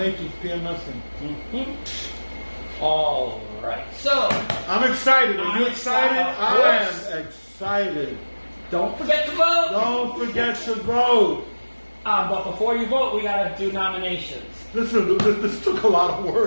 PMSing. Mm-hmm. All right. So, I'm excited. Are you excited? Of course. I am excited. Don't forget to vote. Don't forget to vote. But before you vote, we got to do nominations. Listen, this took a lot of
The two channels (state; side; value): inverted; both; correlation -1.00